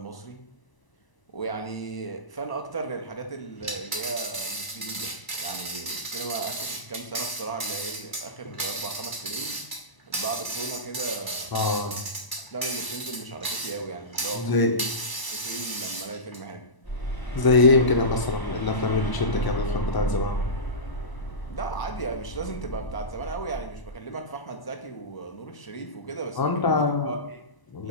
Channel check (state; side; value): late; right; 1.0 ms